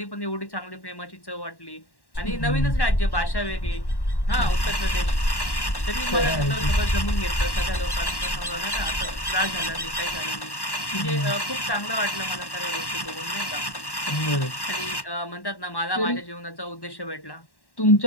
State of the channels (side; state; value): right; late; 1.1 ms